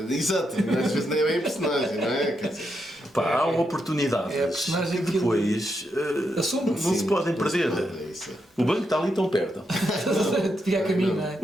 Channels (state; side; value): normal; both; correlation 0.82